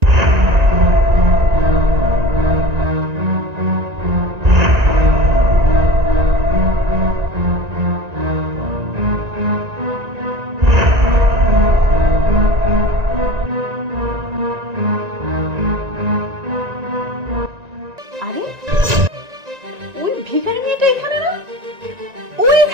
আরে ওই ভিখারি মেয়েটা এখানে না? ও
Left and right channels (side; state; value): left; late; 1.9 ms